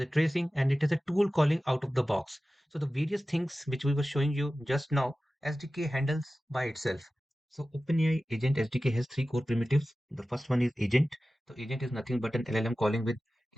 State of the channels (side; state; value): both; normal; correlation 0.96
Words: tracing, and it has a tool calling out of the box. So the various things which we were showing you just now, SDK handles by itself. So OpenAI Agent SDK has three core primitives. The first one is agent. So agent is nothing but an LLM calling with